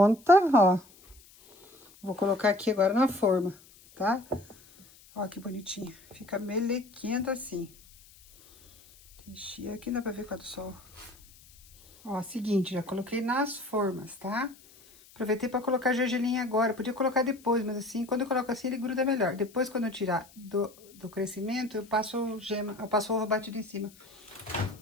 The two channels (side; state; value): left; noise; hiss, 25 dB below the sound